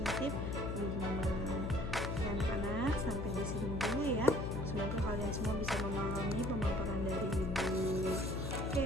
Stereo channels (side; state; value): left; noise; hum, 2 dB below the sound